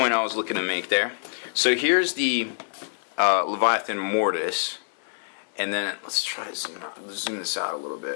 I was looking to make there. So here's the Leviathan Mortis. And then let's try to zoom this out a little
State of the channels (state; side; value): silent; right; digital silence